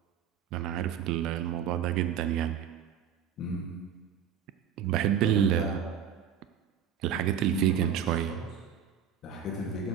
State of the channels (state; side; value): quieter; left; 8.3 dB